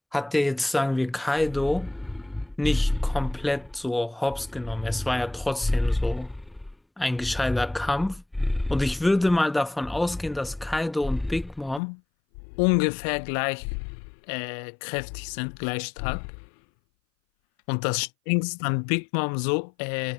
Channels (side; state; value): right; drops out; at 11.8 s